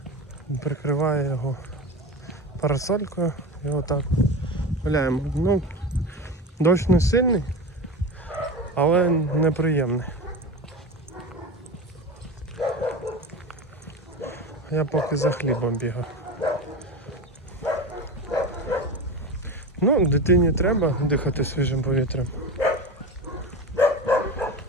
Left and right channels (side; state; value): both; normal; correlation 0.26